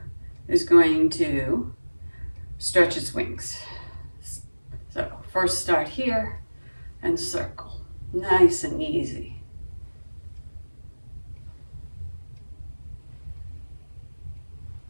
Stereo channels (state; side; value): inverted; both; correlation -1.00